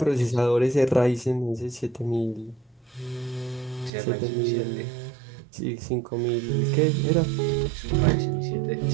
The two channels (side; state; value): left; drops out; at 3.9 s